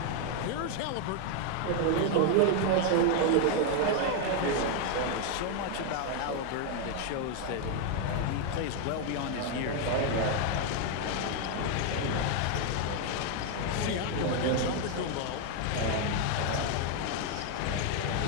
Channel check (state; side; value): different; both; correlation 0.01